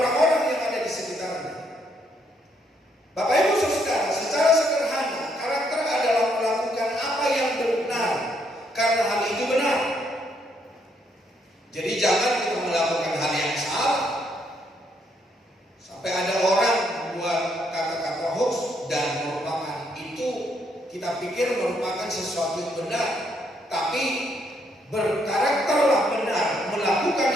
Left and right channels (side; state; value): both; normal; correlation 0.73